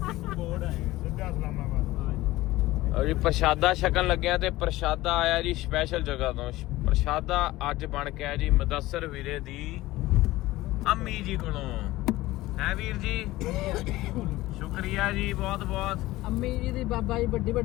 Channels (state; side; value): quieter; right; 17.7 dB